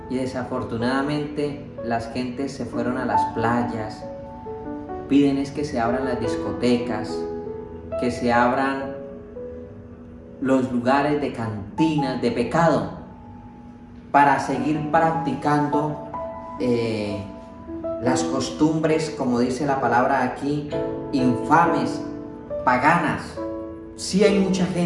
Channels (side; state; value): both; identical; correlation 1.00